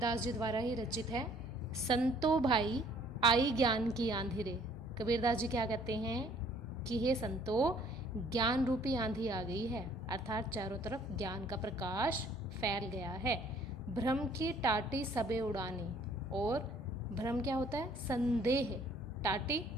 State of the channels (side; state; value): both; normal; correlation 0.59